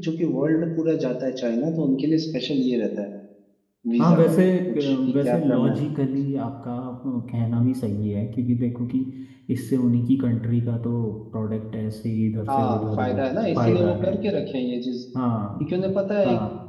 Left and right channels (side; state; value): both; identical; correlation 1.00